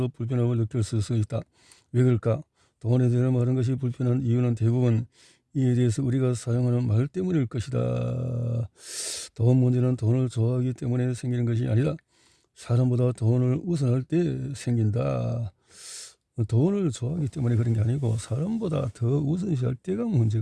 불편함을 느낄 수 있다. 왜 그럴까? 돈에 대한 많은 것이 불편한 이유는 대부분 이에 대해서 우리가 사용하는 말 때문일 것이다. 돈 문제는 돈을 좋아하기 때문에 생기는 것이 아니라 사람보다 돈을 우선할 때 생긴다. 돈을 좋아하기 때문에 그런 게 아니고 사람보다 더 우선시할 때가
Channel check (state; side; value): identical; both; correlation 1.00